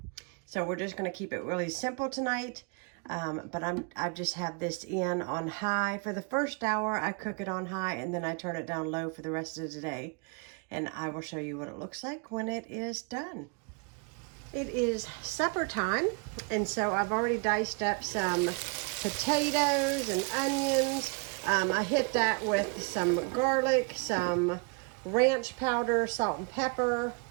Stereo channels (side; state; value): left; quieter; 33.5 dB